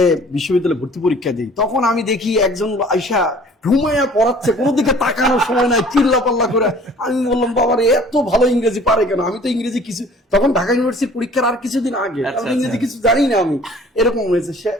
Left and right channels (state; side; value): normal; both; correlation 0.51